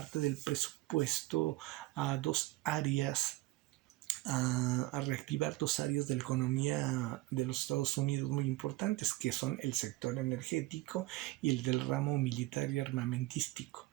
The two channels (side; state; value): left; quieter; 19.1 dB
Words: del presupuesto a dos áreas a reactivar dos áreas de la economía de los Estados Unidos muy importantes, que son el sector energético y el del ramo militar y armamentístico.